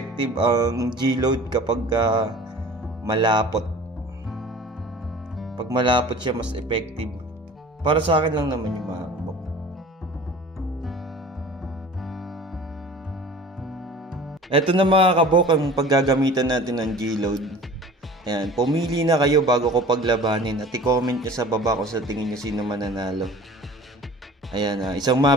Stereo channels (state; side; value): normal; both; correlation 0.43